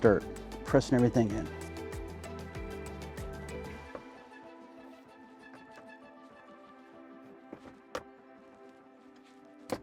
pressing everything in.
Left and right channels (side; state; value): both; identical; correlation 1.00